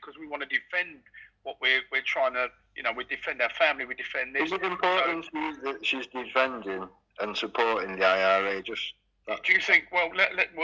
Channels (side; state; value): both; identical; correlation 1.00